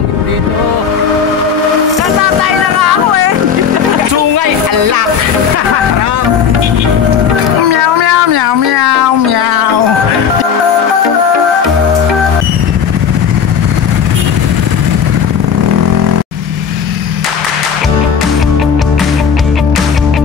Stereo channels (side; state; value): right; quieter; 7.0 dB